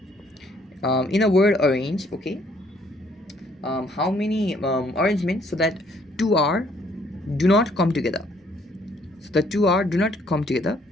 In a word arrange, okay, how many arrangements so that 2r do not come together. So the 2r do not come together.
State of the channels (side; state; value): both; normal; correlation 0.65